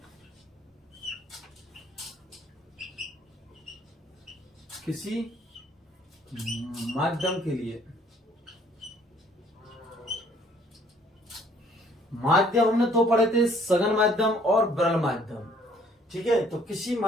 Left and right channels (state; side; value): normal; both; correlation 0.61